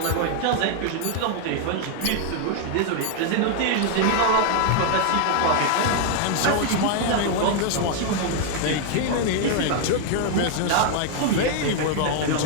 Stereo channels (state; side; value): different; both; correlation 0.00